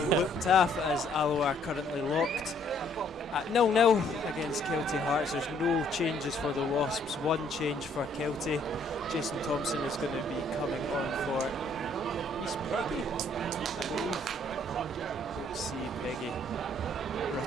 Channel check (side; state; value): both; normal; correlation 0.64